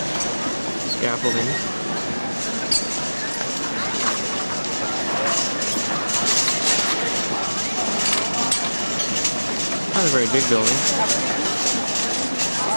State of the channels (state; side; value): inverted; both; correlation -1.00